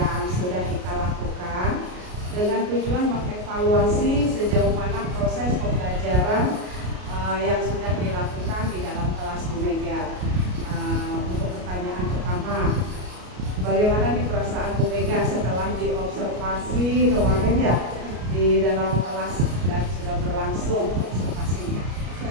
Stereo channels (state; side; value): late; left; 33 ms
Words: sudah kita lakukan dengan tujuan mengevaluasi sejauh mana proses pembelajaran yang sudah dilakukan di dalam kelas Bu Mega. Untuk pertanyaan pertama, bagaimana nih perasaan Bu Mega setelah diobservasi kemarin ya di dalam kelas dan sudah berlangsung observasinya?